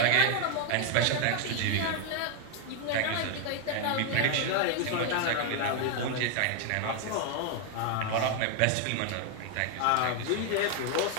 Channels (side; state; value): both; different; correlation 0.00